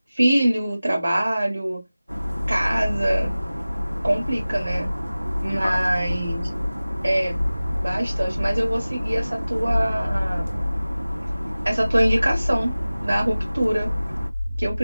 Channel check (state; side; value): inverted; both; correlation -0.97